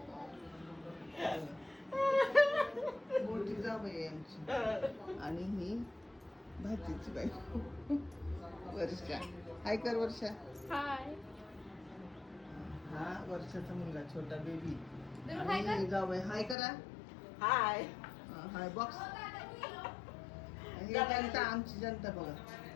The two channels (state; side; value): drops out; right; at 16.6 s